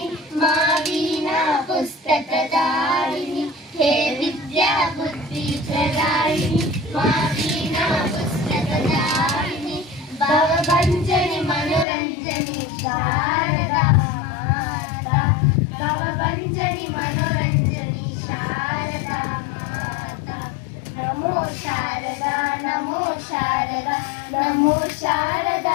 मा वीणा पुस्तकदायिनी हे विद्या बुद्धि प्रदायिनी मा वीणा पुस्तकदायिनी भवभञ्जनि मनोरञ्जनि शारदा माता भवभञ्जनि मनोरञ्जनि शारदा माता नमो शारदा नमो शारदा नमो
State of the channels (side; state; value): right; drops out; at 11.9 s